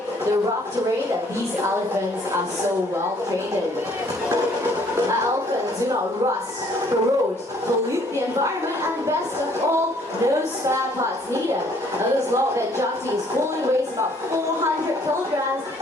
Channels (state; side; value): normal; both; correlation 0.61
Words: the rough terrain that these elephants are so well trained in. Elephants do not rust, corrode, pollute the the environment, and best of all, no spare parts needed. This log that Jati is pulling weighs about 400 kilograms